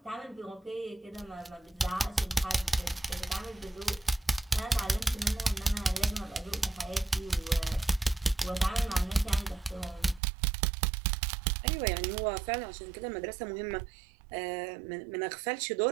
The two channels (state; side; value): drops out; left; at 10.2 s